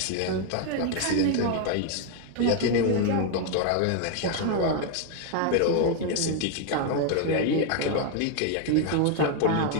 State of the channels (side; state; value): both; different; correlation 0.00